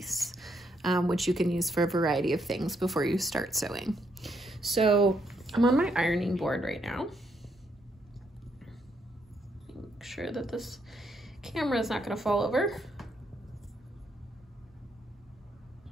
which you can use for a variety of things before you start sewing. So I'm on my ironing board right now. Make sure that this camera is not going to fall over.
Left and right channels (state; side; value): normal; both; correlation 0.75